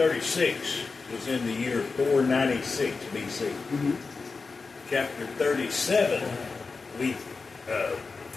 was in the year 496 BC. Mm-hmm. Chapter 37, we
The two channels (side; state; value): right; quieter; 4.3 dB